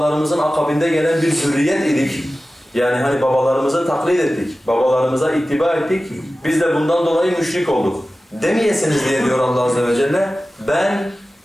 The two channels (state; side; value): normal; both; correlation 0.95